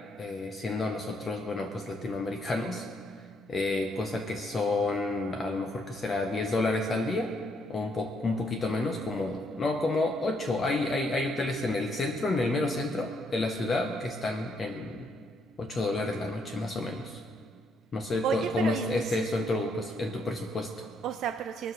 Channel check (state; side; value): normal; both; correlation 0.72